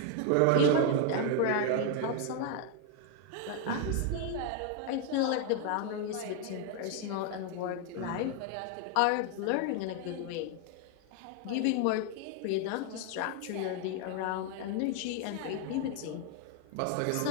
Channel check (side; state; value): both; different; correlation 0.01